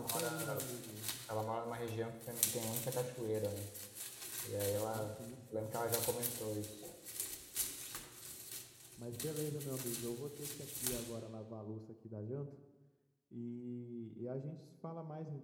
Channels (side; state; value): both; identical; correlation 1.00